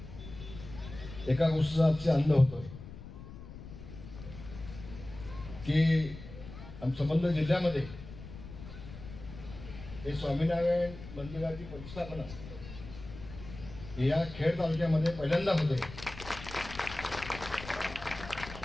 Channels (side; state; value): left; noise; rumble, 13 dB below the sound